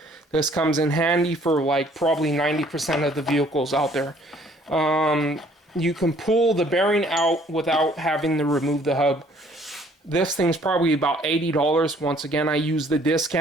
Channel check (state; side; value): normal; both; correlation 0.59